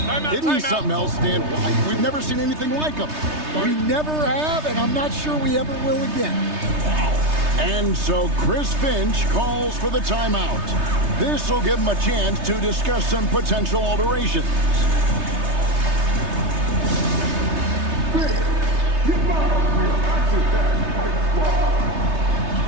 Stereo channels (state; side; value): late; left; 3.3 ms